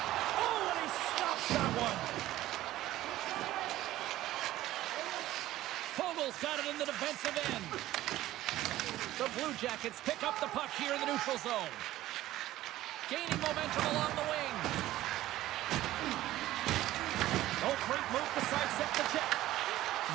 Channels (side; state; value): left; quieter; 15.1 dB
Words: Oh, and he stops that one. Fogel's got it in the defensive end. The Blue Jackets pick up the puck here in the neutral zone. Gaining momentum along the wing. Oh, great move to sidestep the check.